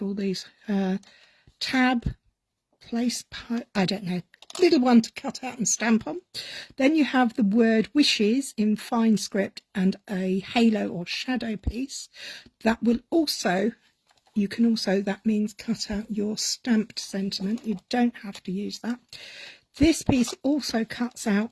these? Tab, place, I don't know. Little one to cut out and stamp on. Then you have the word wishes in fine script and a halo or shadow piece that will also, that means cut out your stamped sentiment. You don't have to use that. This piece also cuts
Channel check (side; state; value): both; identical; correlation 1.00